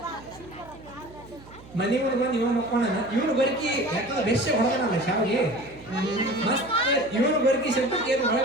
ಮನೆ ಮುಂದೆ ಬಂದು ಇವನು ಮಕ್ಕೋಣ ಇವನು ಬರಕಿ ಯಾಕಂದ್ರೆ ಬೆರ್ಷ ಹೊಡೆದನಲ್ಲ ಶಾವಿಗೆ ಮತ್ತೆ ಇವನು ಬರಕಿ ಶಬ್ದಕ್ಕೆ ಏನು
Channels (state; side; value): noise; right; hum, 20 dB below the sound